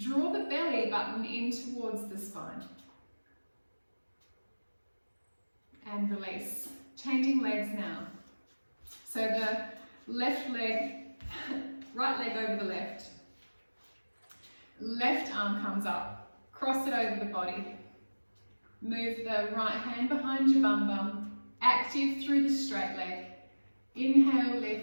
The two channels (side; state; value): both; inverted; correlation -1.00